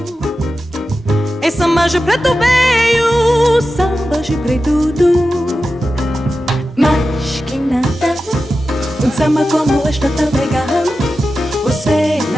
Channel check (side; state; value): both; normal; correlation 0.92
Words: é samba de preto veio, samba de preto tudo. Mas que nada, um samba como este tão legal, você